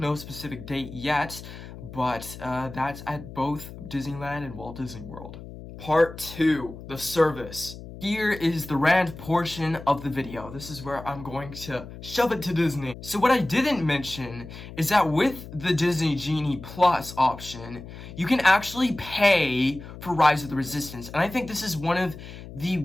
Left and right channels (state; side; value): noise; left; hum, 14 dB below the sound